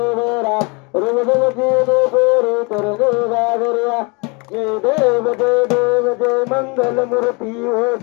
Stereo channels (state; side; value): quieter; right; 30.1 dB